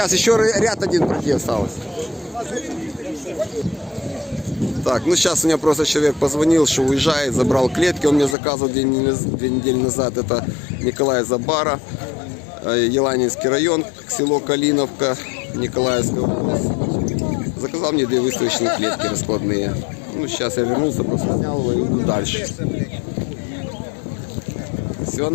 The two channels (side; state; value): right; drops out; at 8.3 s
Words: еще ряд один пройти осталось. Так, ну сейчас у меня просто человек позвонил, что уезжает, забрал клетки, он мне заказывал 2 недели назад, это Николай Забара, Еланинский район, село Калиновка, Николаевская область. Заказал мне 2 выставочные клетки раскладные. Ну, сейчас я вернулся, просто снял его и иду дальше. Все